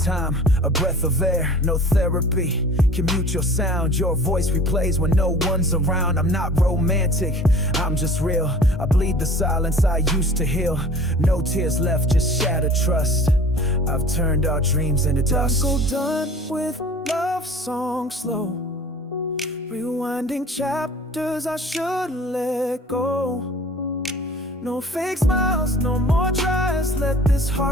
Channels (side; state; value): both; normal; correlation 0.45